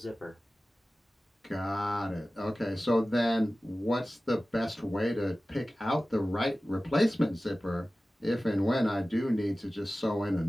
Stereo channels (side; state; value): both; normal; correlation 0.96